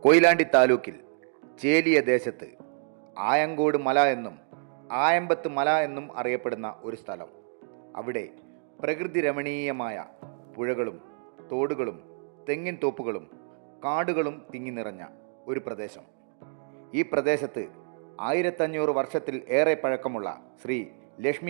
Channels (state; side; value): silent; left; digital silence